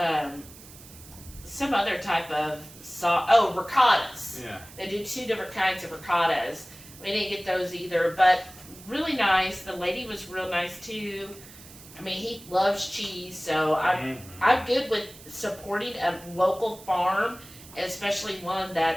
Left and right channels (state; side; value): noise; right; hiss, 19 dB below the sound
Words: some other type of sauce. Oh, ricottas. Yeah. They do 2 different kinds of ricottas. We didn't get those either, but really nice. The lady was real nice too. I mean, he loves cheese, so I'm good with supporting a local farm, especially one